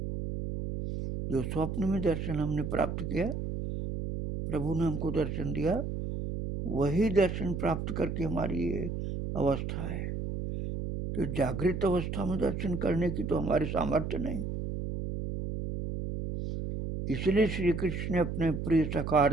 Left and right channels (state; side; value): noise; right; hum, 4 dB below the sound